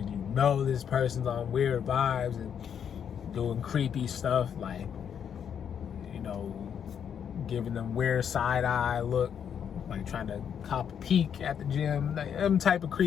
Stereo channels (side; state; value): right; quieter; 8.1 dB